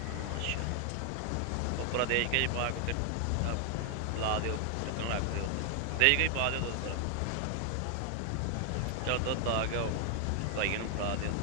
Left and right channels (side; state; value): both; different; correlation 0.00